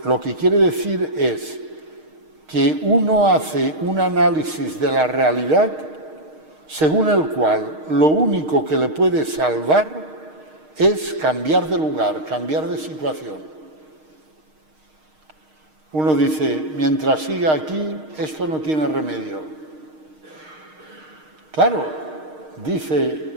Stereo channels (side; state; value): left; late; 6.5 ms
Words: lo que quiere decir es que uno hace un análisis de la realidad según el cual lo único que le puede salvar es cambiar de lugar, cambiar de situación. Uno dice, mientras siga aquí, esto no tiene remedio. Claro,